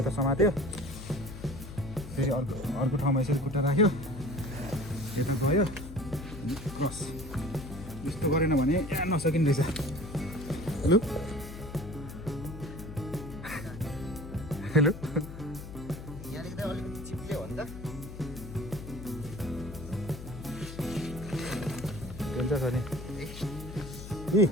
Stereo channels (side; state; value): left; noise; hum, 11 dB below the sound